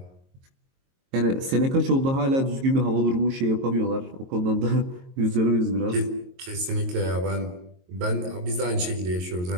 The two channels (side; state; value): left; late; 22 ms